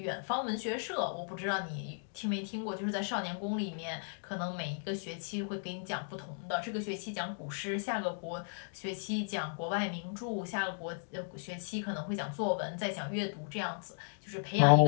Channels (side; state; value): right; silent; digital silence